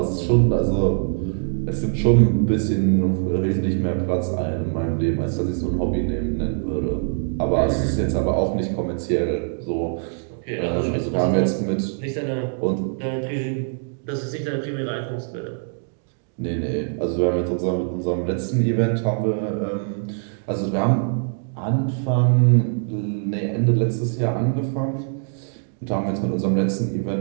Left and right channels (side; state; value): left; silent; digital silence